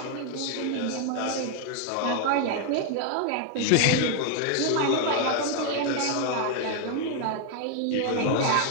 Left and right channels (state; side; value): different; both; correlation 0.01